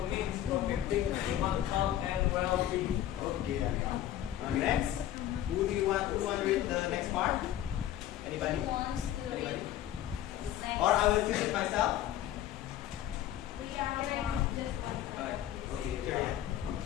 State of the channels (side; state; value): right; quieter; 12.3 dB